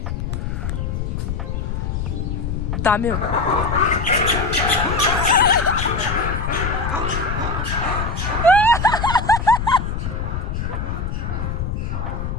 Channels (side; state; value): left; noise; rumble, 2 dB below the sound